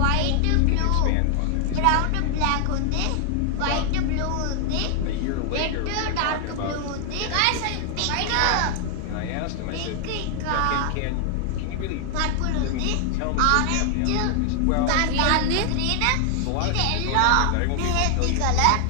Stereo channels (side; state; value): both; different; correlation 0.00